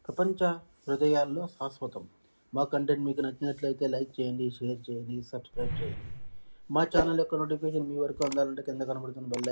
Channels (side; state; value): both; inverted; correlation -1.00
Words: ప్రపంచ హృదయాల్లో శాశ్వతం. మా కంటెంట్ మీకు నచ్చినట్లయితే లైక్ చేయండి, షేర్ చేయండి, సబ్స్క్రైబ్ చేయండి. మా ఛానల్ యొక్క నోటిఫికేషన్ మీ వరకు అందాలంటే కింద కనబడుతున్న బెల్